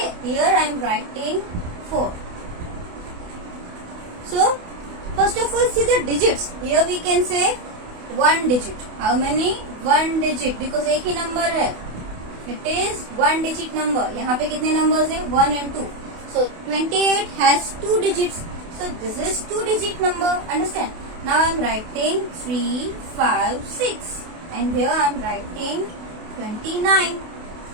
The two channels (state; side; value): late; left; 28 ms